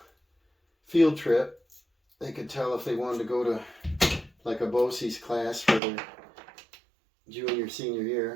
field trip. They could tell if they wanted to go to like a BOCES class for their junior, senior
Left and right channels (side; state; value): left; drops out; at 5.8 s